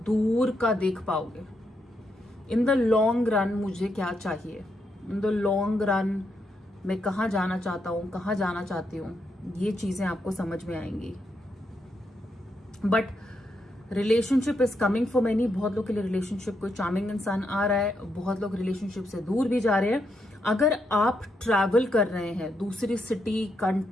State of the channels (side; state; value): both; normal; correlation 0.80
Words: का देख पाओगे, इन द लॉन्ग रन मुझे क्या चाहिए, इन द लॉन्ग रन मैं कहाँ जाना चाहता हूँ, कहाँ जाना चाहती हूँ, ये चीजें आपको समझ में आएंगी। But relationship is coming for many. बहुत लोग के लिए रिलेशनशिप कोई चार्मिंग इंसान आ रहा है, बहुत लोग रिलेशनशिप से दूर भी जा रहे हैं। अगर आप ट्रैवल कर रहे हैं दूसरी सिटी,